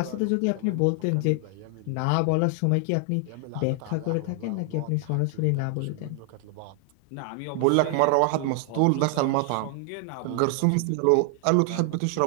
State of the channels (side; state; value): both; different; correlation 0.00